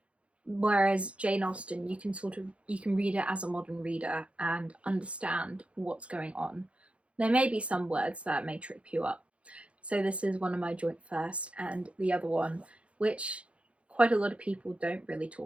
Whereas Jane Austen, you can read it as a modern reader and understand what's going on. There may be some words that may trip you up. So this is one of my joint first, and the other one, which quite a lot of people don't really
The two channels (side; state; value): left; late; 0.061 ms